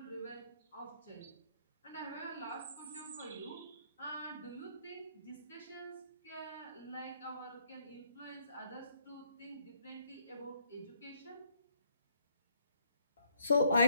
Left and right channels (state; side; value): inverted; both; correlation -0.69